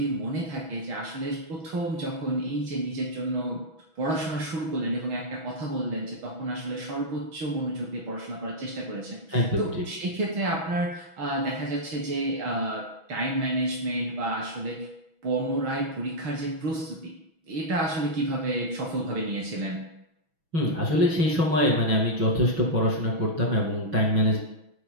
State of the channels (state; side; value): late; left; 6.1 ms